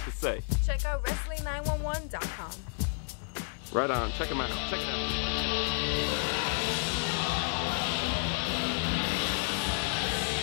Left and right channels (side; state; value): right; silent; 57 dB below the other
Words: to say? Check out Wrestling911.com. Right on, check them out. Check it out.